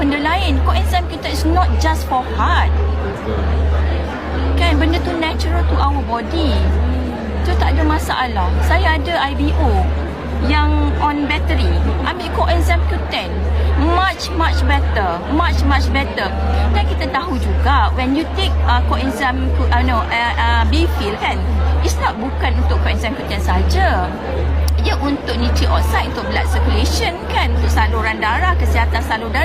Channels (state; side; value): noise; right; rumble, 27 dB below the sound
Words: lain. Coenzyme kita is not just for heart. Kan, benda tu natural to our body. Tu tak ada masalah. Saya ada IBO yang on battery, ambil coenzyme Q10, much better. Dan kita tahu juga when you take coenzyme B-fil kan, it's not bukan untuk coenzyme Q10 saja. Dia untuk nitric oxide, untuk blood circulation kan, untuk saluran darah, kesihatan salur